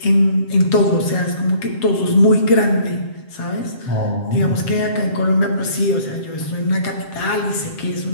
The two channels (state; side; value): late; right; 7.5 ms